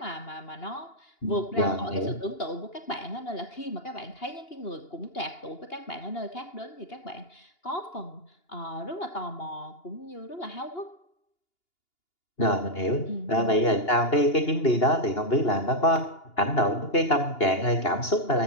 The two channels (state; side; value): late; right; 2.8 ms